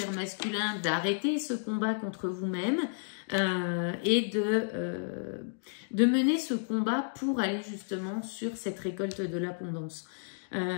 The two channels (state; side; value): silent; right; digital silence